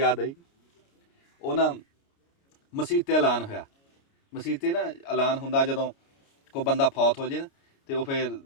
ਆਈ, ਉਹ ਨਾ ਮਸੀਤ 'ਤੇ ਐਲਾਨ ਹੋਇਆ। ਮਸੀਤ 'ਤੇ ਨਾ ਐਲਾਨ ਹੁੰਦਾ ਜਦੋਂ ਕੋਈ ਬੰਦਾ ਫੌਤ ਹੋ ਜੇ ਨਾ, ਤੇ ਉਹ ਫਿਰ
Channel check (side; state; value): right; late; 29 ms